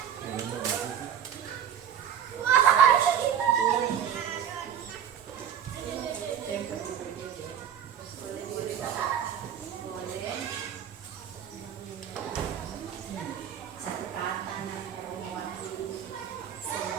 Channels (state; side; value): quieter; left; 9.1 dB